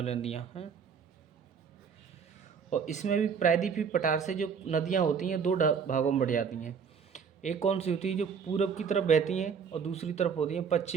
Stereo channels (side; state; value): left; quieter; 6.5 dB